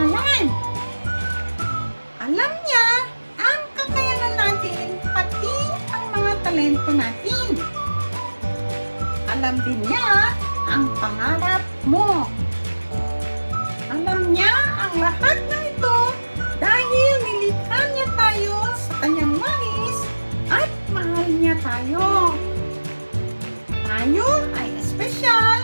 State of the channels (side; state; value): both; inverted; correlation -1.00